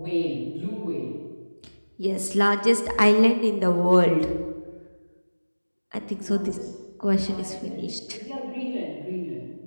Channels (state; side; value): inverted; both; correlation -1.00